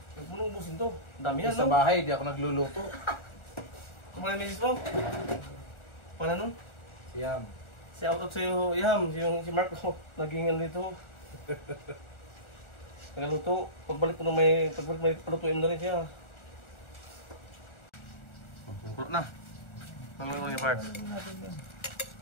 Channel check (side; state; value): right; late; 1.4 ms